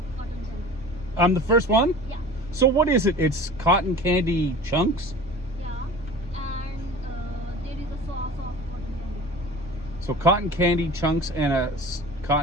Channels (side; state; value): both; normal; correlation 0.40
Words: cotton candy. I'm the first one? Yeah. So what is it? It's cotton candy chunks? Yeah. And there is a sauce of cotton candy. So cotton candy chunks and a